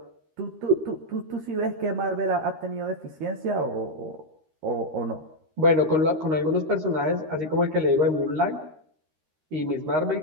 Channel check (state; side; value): late; left; 13 ms